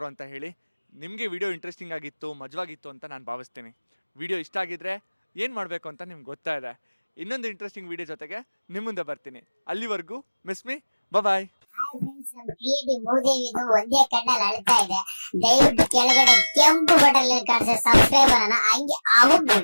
ಅಂತ ಹೇಳಿ. ನಿಮಗೆ ವಿಡಿಯೋ ಇಂಟ್ರೆಸ್ಟಿಂಗ್ ಆಗಿತ್ತು, ಮಜವಾಗಿತ್ತು ಅಂತ ನಾನು ಭಾವಿಸ್ತೀನಿ. ವಿಡಿಯೋ ಇಷ್ಟ ಆಗಿದ್ರೆ ಏನು ಮಾಡಬೇಕು ಅಂತ ನಿಮ್ಗೆ ಗೊತ್ತಾ ಇದೆ. ಇನ್ನೊಂದು ಇಂಟ್ರೆಸ್ಟಿಂಗ್ ವಿಡಿಯೋ ಜೊತೆಗೆ ನಿಮ್ಮ ಮುಂದೆ ಬರ್ತೀನಿ. ಅಲ್ಲಿವರೆಗೂ ಮಿಸ್ ಮೀ, ಬಾಯ್. ಕ್ರಿಯೇಟಿವ್ ಮೂದೇವಿದು ಒಂದೇ ಕಣ್ಣಲ್ಲಿ ಅಳ್ತಾ ಇದೆ. ದಯವಿಟ್ಟು ಕೆಳಗಡೆ ಕೆಂಪು ಬಟನ್ ಕಾಣಿಸೋ ಸಬ್ಸ್ಕ್ರೈಬ್ ಅನ್ನ ಹಂಗೆ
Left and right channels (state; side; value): inverted; both; correlation -1.00